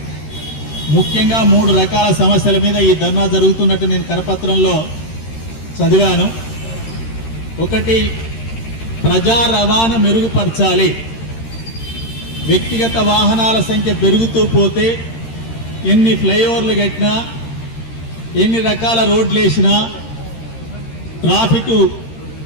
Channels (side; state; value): right; late; 13 ms